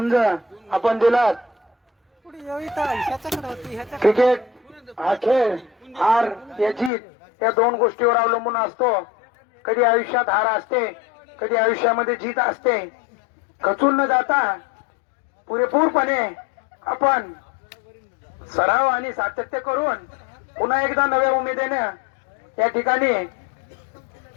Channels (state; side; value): drops out; right; at 6.9 s